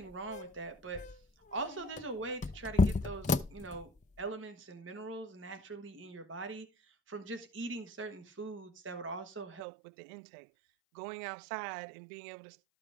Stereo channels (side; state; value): left; drops out; at 9.7 s